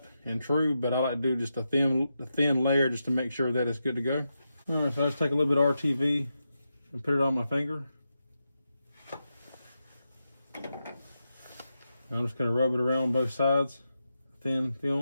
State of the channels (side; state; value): both; inverted; correlation -0.87